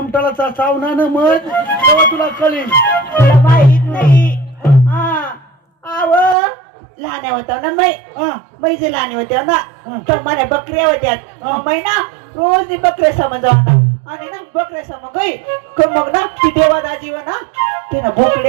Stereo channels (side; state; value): left; drops out; at 6.4 s